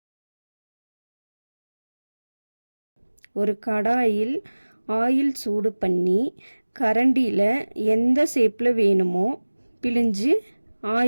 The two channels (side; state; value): both; inverted; correlation -1.00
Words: ஒரு கடாயில் ஆயில் சூடு பண்ணி கரண்டியில் எந்த ஷேப்பில் வேணுமோ பிழிஞ்சு